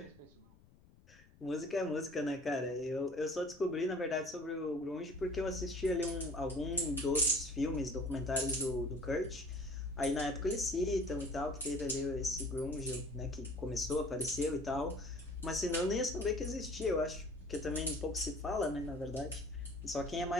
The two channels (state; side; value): noise; left; rumble, 26 dB below the sound